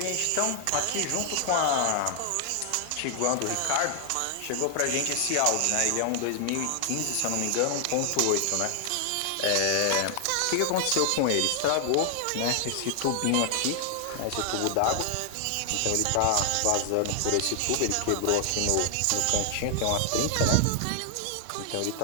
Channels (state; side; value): different; both; correlation 0.00